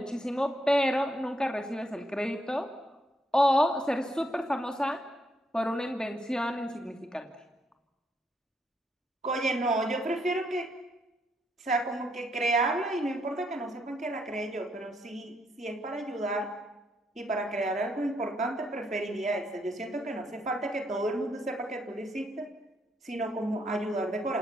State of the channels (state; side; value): normal; both; correlation 0.75